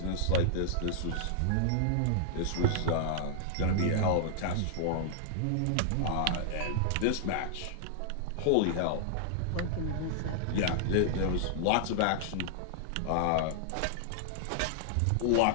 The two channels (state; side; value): different; both; correlation -0.01